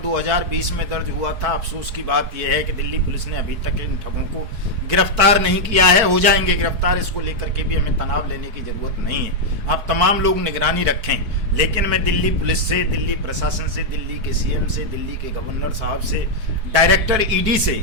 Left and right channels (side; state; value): left; late; 4.6 ms